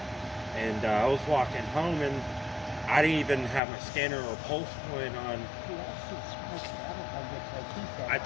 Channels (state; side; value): drops out; right; at 3.6 s